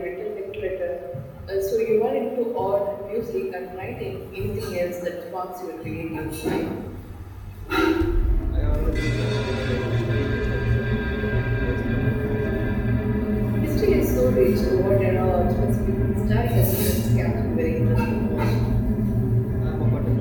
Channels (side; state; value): both; identical; correlation 1.00